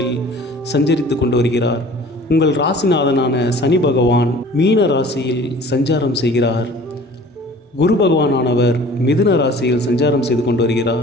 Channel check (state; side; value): normal; both; correlation 0.47